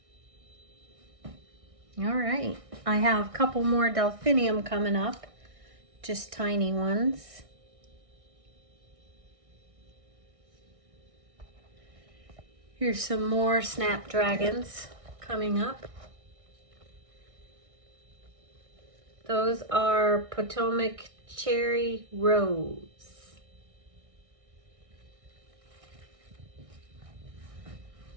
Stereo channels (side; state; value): left; late; 1.6 ms